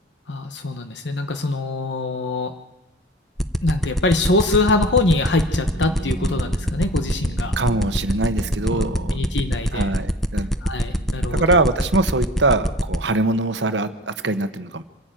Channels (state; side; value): normal; both; correlation 0.39